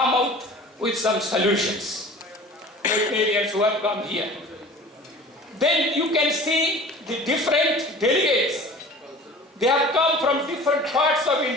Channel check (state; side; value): normal; both; correlation 0.42